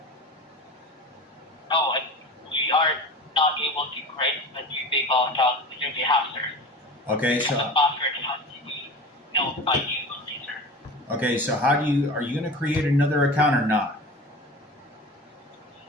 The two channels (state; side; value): normal; both; correlation 0.34